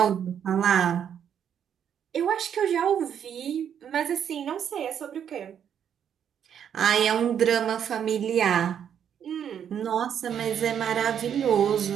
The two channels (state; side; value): quieter; left; 8.7 dB